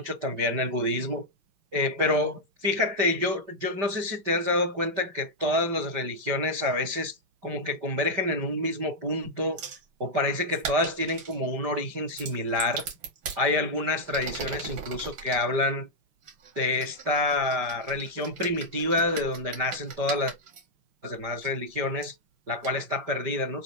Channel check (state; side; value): late; left; 5.9 ms